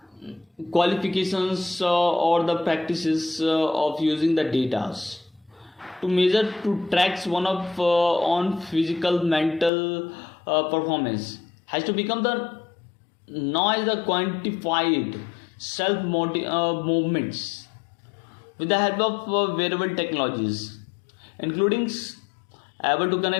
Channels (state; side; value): drops out; right; at 9.7 s